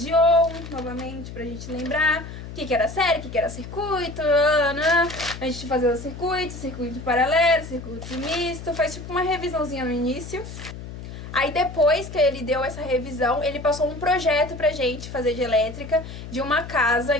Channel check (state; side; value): noise; left; hum, 11 dB below the sound